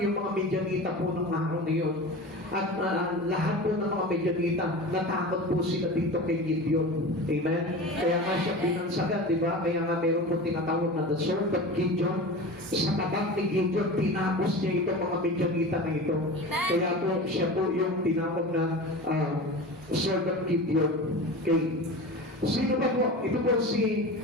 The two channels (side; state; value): both; normal; correlation 0.32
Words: yung mga Midianita po ng araw na yun. At lahat po ng mga Midianita, natakot po sila dito kay Gideon. Amen? Kaya nga siya binansagan, di ba? Kaya nga meron po tinatawag na the sword of Gideon. Sa tabak ni Gideon, tinapos niya itong mga Midianita na ito. Kaya po, siya po yung tinawag na sword of Gideon. Okay. Sino ba po? Ito po si